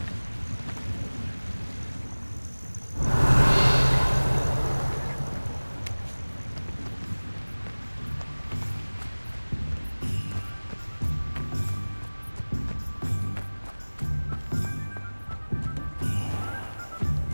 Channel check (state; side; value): inverted; both; correlation -1.00